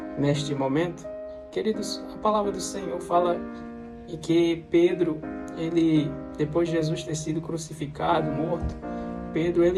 neste momento. Queridos, a palavra do Senhor fala que Pedro, depois de Jesus ter sido crucificado, morto, Pedro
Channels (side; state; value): both; identical; correlation 1.00